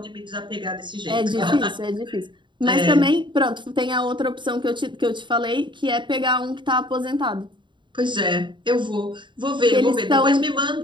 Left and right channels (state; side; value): late; left; 0.23 ms